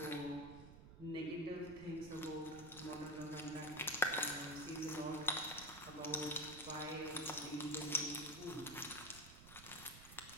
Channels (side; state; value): right; noise; rumble, 15 dB below the sound